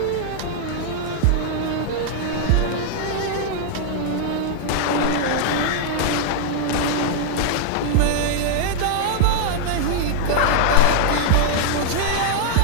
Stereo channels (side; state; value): both; different; correlation -0.01